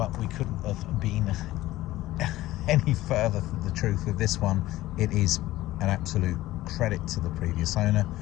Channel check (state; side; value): quieter; right; 16.3 dB